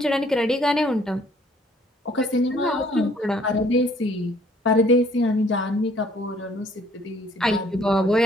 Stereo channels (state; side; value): normal; both; correlation 0.60